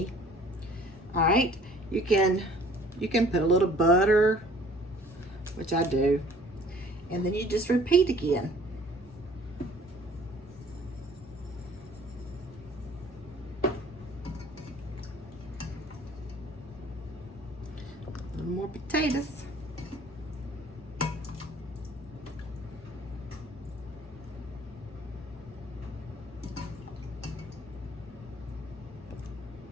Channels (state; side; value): normal; both; correlation 0.54